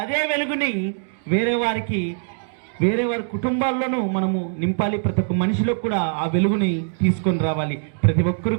అదే వెలుగుని వేరే వారి కుటుంబాల్లోనూ మనము నింపాలి. ప్రతి ఒక్క మనిషిలో కూడా ఆ వెలుగుని తీసుకొని రావాలి. ప్రతి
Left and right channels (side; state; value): left; silent; digital silence